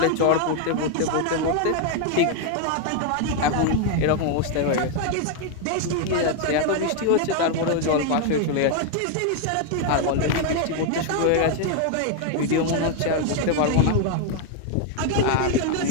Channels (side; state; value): both; different; correlation 0.01